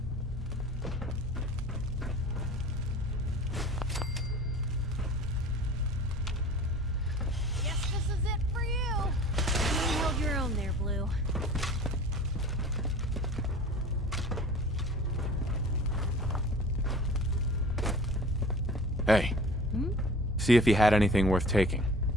Guess this is it for you. You held your own there, Blue. Hey. Hmm? See if he had anything worth taking.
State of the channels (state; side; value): normal; both; correlation 0.43